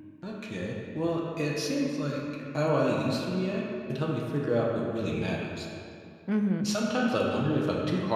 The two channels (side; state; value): both; identical; correlation 1.00